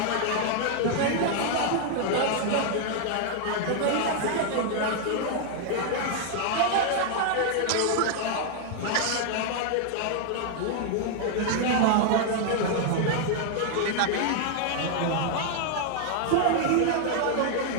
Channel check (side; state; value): both; different; correlation 0.00